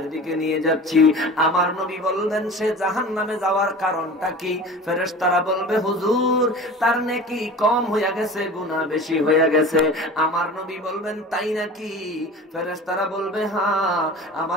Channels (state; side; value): normal; both; correlation 0.37